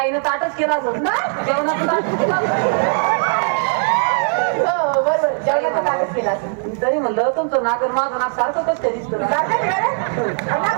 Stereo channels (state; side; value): silent; left; 67 dB below the other